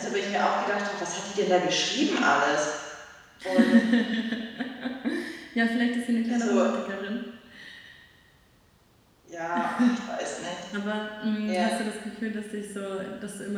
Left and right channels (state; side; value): identical; both; correlation 1.00